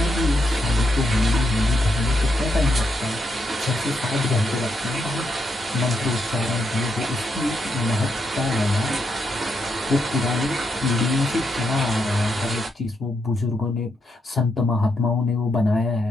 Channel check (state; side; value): normal; both; correlation 0.80